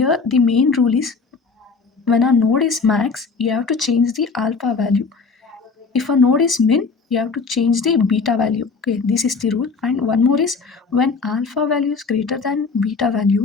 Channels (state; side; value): quieter; right; 4.6 dB